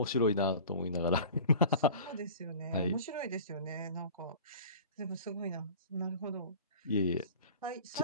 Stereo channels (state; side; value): inverted; both; correlation -0.41